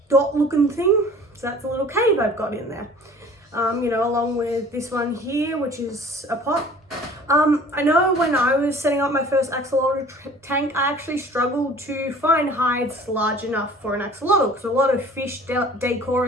dot looking thing, so that's a little cave I've got in there, along with this one here, which is a pot. I know when I was setting up my first axolotl tank, I actually struggled to find hides large enough for an axolotl, because a lot of fish decor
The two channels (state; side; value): normal; both; correlation 0.47